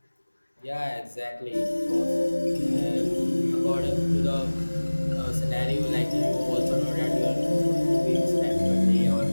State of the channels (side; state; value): both; inverted; correlation -1.00